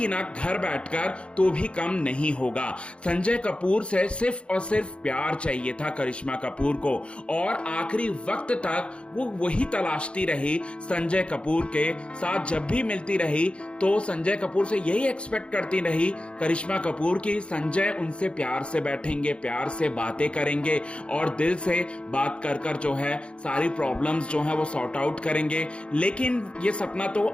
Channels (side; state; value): right; late; 0.058 ms